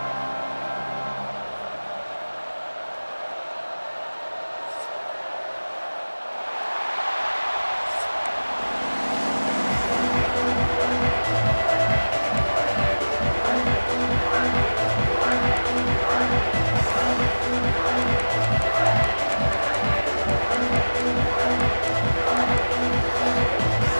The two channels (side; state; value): both; inverted; correlation -1.00